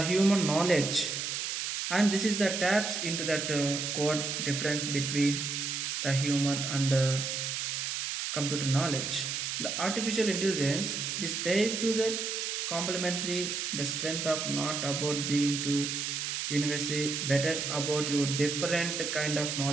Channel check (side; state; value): right; noise; hiss, 2 dB below the sound